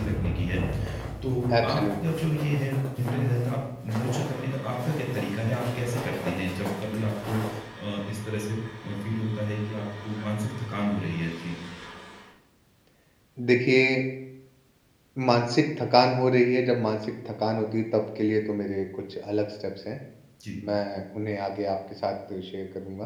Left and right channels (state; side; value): identical; both; correlation 1.00